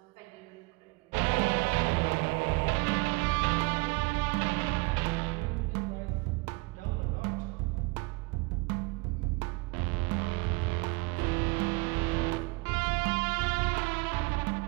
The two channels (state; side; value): quieter; left; 26.7 dB